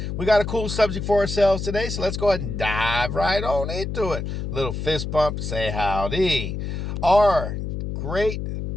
we got a cool subject for ourselves today, so let's go ahead and dive right on into it. Little fist bump, say howdy. Our great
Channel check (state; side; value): noise; left; hum, 4 dB below the sound